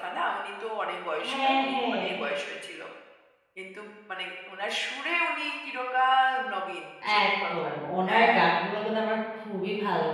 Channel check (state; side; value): identical; both; correlation 1.00